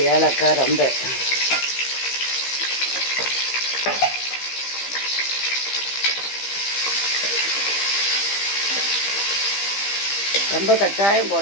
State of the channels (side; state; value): right; late; 15 ms